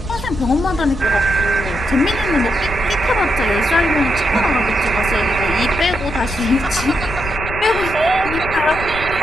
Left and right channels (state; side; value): noise; left; rumble, 9 dB below the sound